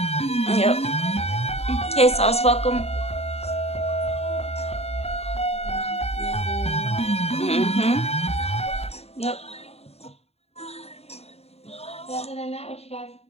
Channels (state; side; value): late; right; 0.30 ms